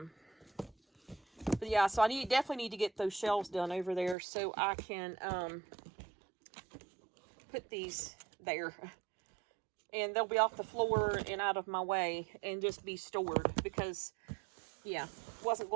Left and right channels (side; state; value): left; drops out; at 4.2 s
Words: yeah, so I definitely need to get those shelves done over there so I can put these there, and they'll be off the floor and out of my way and just be stored because, yeah, wasn't